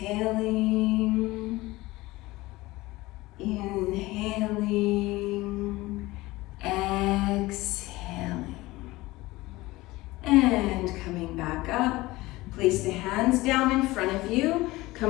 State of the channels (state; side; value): quieter; right; 19.7 dB